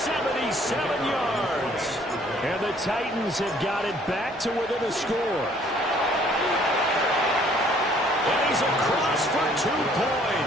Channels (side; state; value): both; normal; correlation 0.60